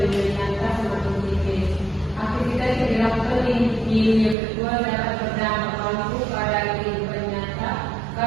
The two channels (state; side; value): drops out; left; at 4.4 s